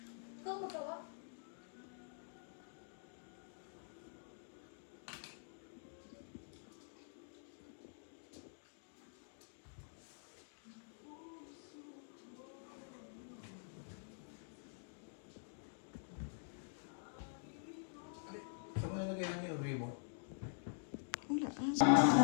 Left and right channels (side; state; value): right; silent; digital silence